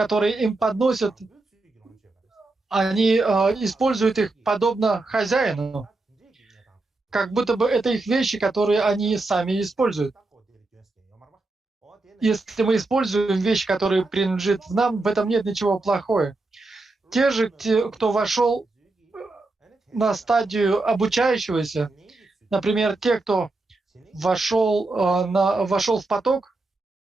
им подносят, они используют их подобно хозяину. Как будто бы это их вещи, которые они сами используют. Если мы используем вещи, которые принадлежат нам, в этом нет ничего плохого. Те же, кто вошел на стадию обучающегося, например, те, кто вошел в поток,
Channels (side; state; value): left; quieter; 3.2 dB